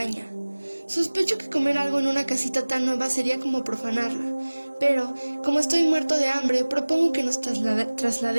«Sospecho que comer algo en una casita tan nueva sería como profanarla, pero, como estoy muerto de hambre, propongo que nos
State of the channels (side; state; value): both; inverted; correlation -1.00